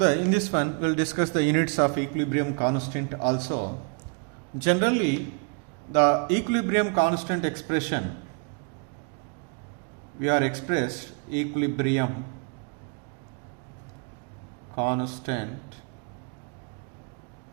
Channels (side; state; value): left; quieter; 39.1 dB